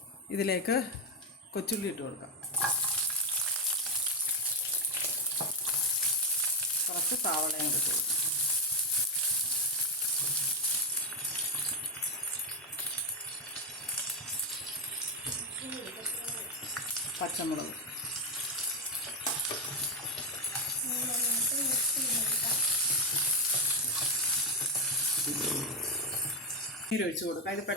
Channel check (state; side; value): normal; both; correlation 0.08